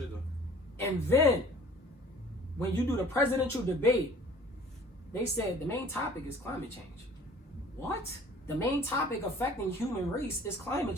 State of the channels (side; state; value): both; normal; correlation 0.50